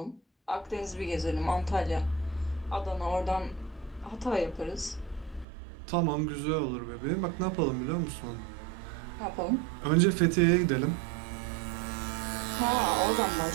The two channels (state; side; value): drops out; left; at 5.5 s